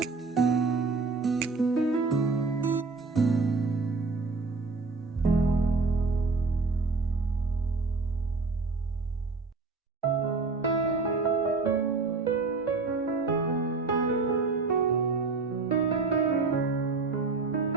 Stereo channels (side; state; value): left; quieter; 4.1 dB